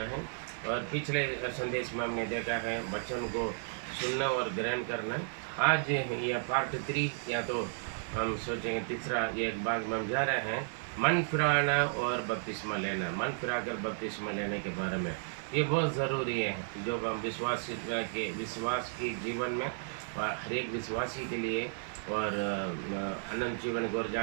है। और पिछले संदेश में हमने देखा है वचन को सुनना और ग्रहण करना। आज यह पार्ट 3 या तो हम सोचेंगे तीसरा एक भाग में हम जा रहे हैं, मन फिराना और बपतिस्मा लेना। मन फिराकर बपतिस्मा लेने के बारे में ये बहुत ज़रूरी है, जो हम विश्वास की जीवन में हर एक विश्वासी के लिए और अनंत जीवन को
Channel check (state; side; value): silent; left; digital silence